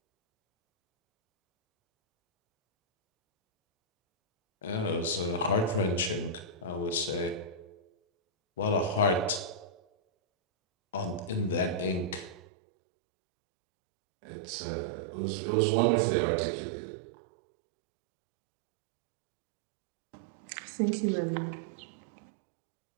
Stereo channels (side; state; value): left; drops out; at 12.4 s